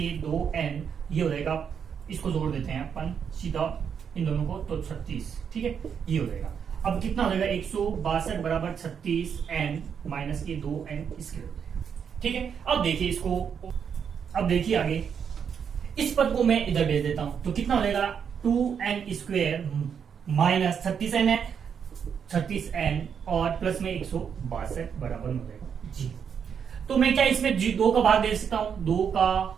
2n, ये हो जाएगा, इसको जोड़ देते हैं अपन सीधा इन दोनों को, तो 36, ठीक है। ये हो जाएगा, अब कितना हो जाएगा 162 बराबर 36n माइनस के 2n इसके हो जाएगा, ठीक है। अब देखिए इसको, अब देखिए आगे, इस पद को मैं इधर भेज देता हूं तो कितना हो जाएगा 2n स्क्वायर माइनस 36n है, 36n और प्लस में 162 बराबर हो जाएगा जी। तो मैं क्या इसमें जी 2 का भाग दे सकता हूं, 2 का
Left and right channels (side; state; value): left; quieter; 7.3 dB